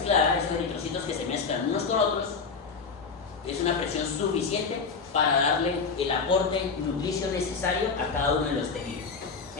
esos eritrocitos que se mezclan unos con otros, es una presión suficiente para darle el aporte nutricio necesario a cada uno de los tejidos.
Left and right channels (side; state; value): right; quieter; 5.0 dB